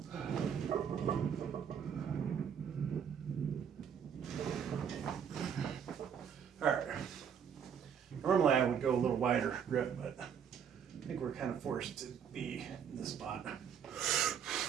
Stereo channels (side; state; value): left; quieter; 7.8 dB